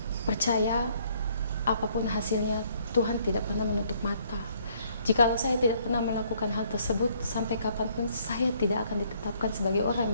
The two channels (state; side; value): inverted; both; correlation -0.65